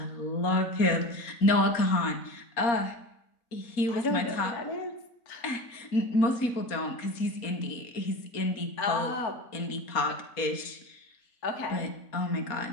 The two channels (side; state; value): right; late; 4.2 ms